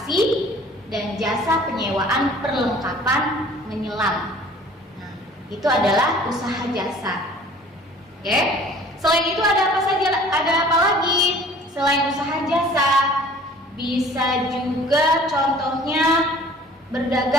dan jasa penyewaan perlengkapan menyelam. Nah, itu adalah usaha jasa. Oke. Selain itu ada apa saja? Ada apa lagi selain usaha jasa? Bisa juga contohnya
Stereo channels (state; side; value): normal; both; correlation 0.50